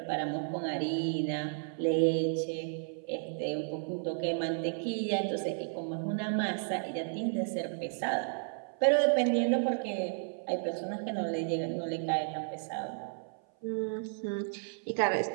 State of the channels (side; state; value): left; silent; 56 dB below the other